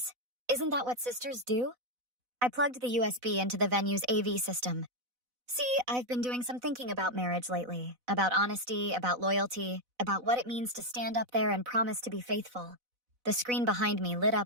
Isn't that what sisters do? I plugged the USB into the venue's AV system. See, I've been doing some thinking about marriage lately, about honesty, about loyalty, about what it means to stand up there and promise to be faithful. The screen behind me lit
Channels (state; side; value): late; left; 4.0 ms